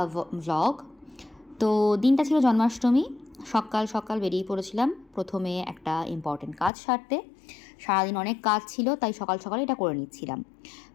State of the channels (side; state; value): right; drops out; at 6.7 s